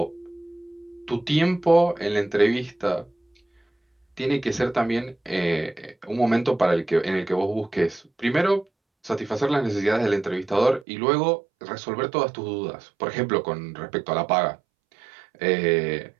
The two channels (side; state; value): left; drops out; at 10.9 s